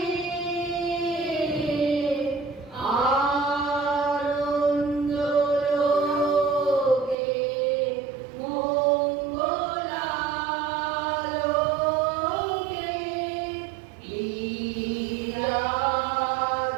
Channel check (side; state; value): left; drops out; at 7.2 s